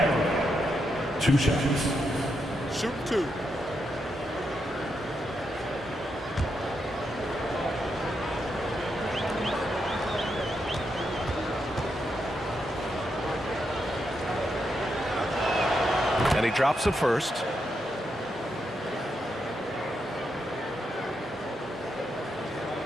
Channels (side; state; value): both; normal; correlation 0.82